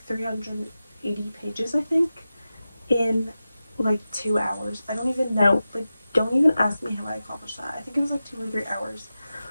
380 pages, I think, in like 2 hours. I don't even know, like, don't even ask me how I accomplished that. I think it was like 2 or 3 hours.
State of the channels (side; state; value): both; inverted; correlation -0.93